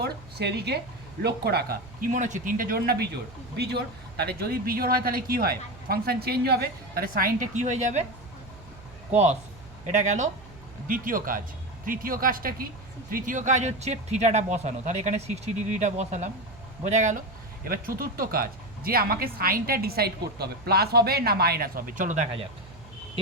সেদিকে লক্ষ্য রাখা। কি মনে হচ্ছে, 3টে জোড় না বিজোড়? বিজোড়। তাহলে যদি বিজোড় হয় তাহলে কি হয়, ফাংশন চেঞ্জ হবে, তাহলে সাইনটা কি হয়ে যাবে, কস। এটা গেল দ্বিতীয় কাজ। তৃতীয় কাজটা কি, তৃতীয় কাজ হচ্ছে থিটাটা বসানো, তাহলে এখানে 60 ডিগ্রিটা বসালাম, বোঝা গেল। এবার চতুর্থ কাজ, যে আমাকে সাইনটা ডিসাইড করতে হবে, প্লাস হবে না মাইনাস হবে, চলো দেখা যাক।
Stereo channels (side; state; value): right; noise; hum, 21 dB below the sound